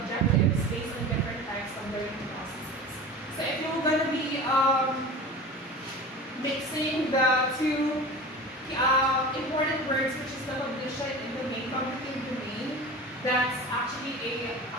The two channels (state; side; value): normal; both; correlation 0.34